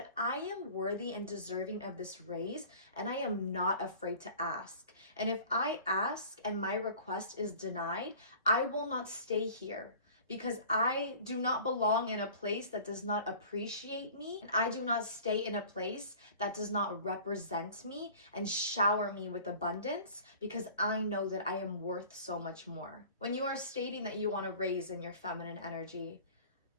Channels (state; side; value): inverted; both; correlation -0.44